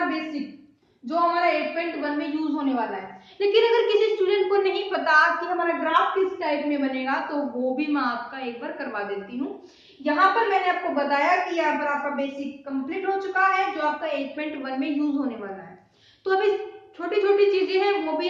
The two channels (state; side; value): identical; both; correlation 1.00